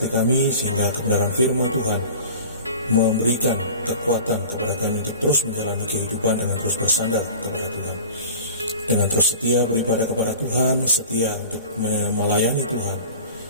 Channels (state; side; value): inverted; both; correlation -0.39